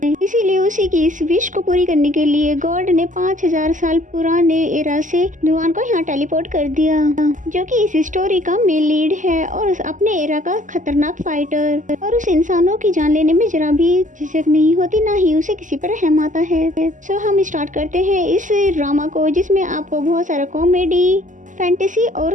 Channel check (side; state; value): left; late; 0.37 ms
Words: इसीलिए उसी की इस विश को पूरी करने के लिए गॉड ने 5000 साल पुराने एरा से जुआन को यहाँ टेलीपोर्ट कर दिया, जो कि इस स्टोरी का मेन लीड है और अपने एरा का खतरनाक फाइटर। और उस इंसानों की जान लेने में जरा भी झिझक नहीं होती, ना ही उसे किसी पर रहम आता है। सो हम स्टार्ट करते हैं इस ड्रामा को, जिसमें आपको बहुत सारा कॉमेडी, फैंटेसी और